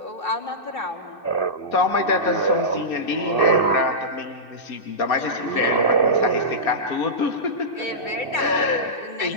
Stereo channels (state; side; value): late; right; 2.6 ms